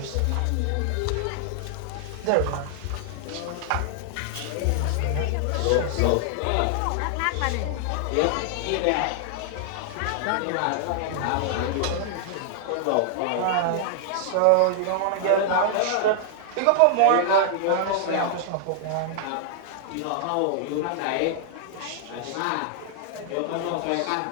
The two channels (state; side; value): different; both; correlation -0.01